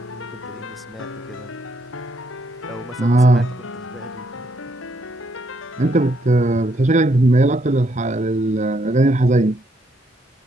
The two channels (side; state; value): both; normal; correlation 0.74